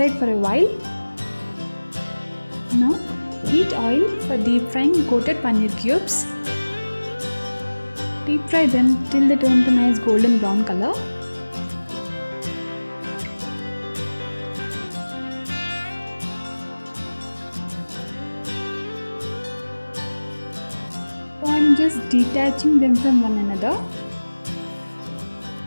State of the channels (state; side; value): inverted; both; correlation -1.00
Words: for a while. Now heat oil for deep frying coated paneer cubes. Deep fry them till they turn to nice golden brown color. So I'm just detaching them from one another.